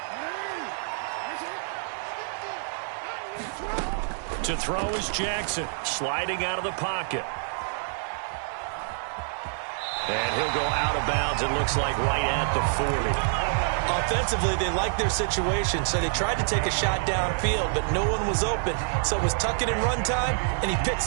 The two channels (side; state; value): left; silent; 60 dB below the other